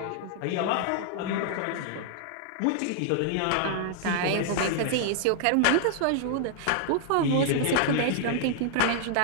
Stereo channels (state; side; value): different; both; correlation -0.01